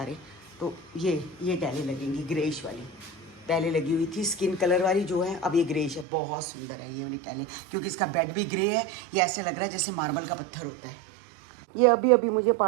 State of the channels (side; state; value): left; drops out; at 6.1 s